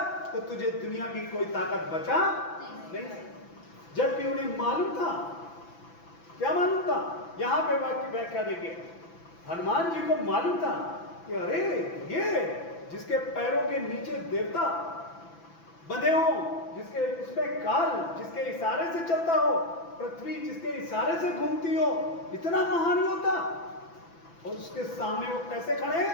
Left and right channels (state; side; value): late; right; 6.0 ms